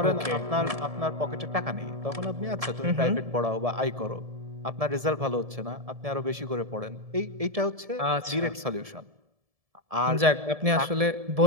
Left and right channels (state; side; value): late; left; 1.7 ms